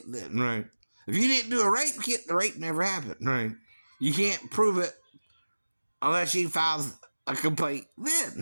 then, right? If you didn't do a rape kit, the rape never happened, right? You can't prove it unless she files a complaint then,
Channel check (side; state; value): both; inverted; correlation -1.00